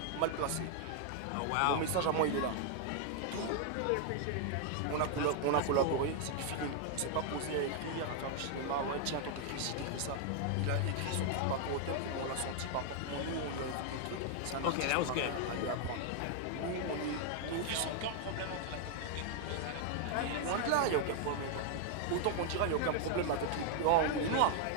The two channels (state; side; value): different; both; correlation 0.00